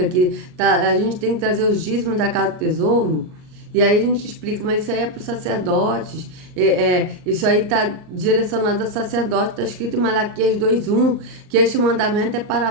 que a gente tem que trazer os dízimos da casa do tesouro. E aí a gente explica, mas isso aí é para os sacerdotes, isso aí está direcionado a sacerdote, está escrito em Malaquias 2:1, que este mandamento é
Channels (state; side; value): late; left; 39 ms